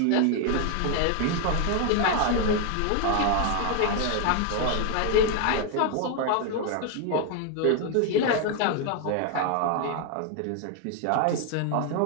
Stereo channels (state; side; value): different; both; correlation 0.01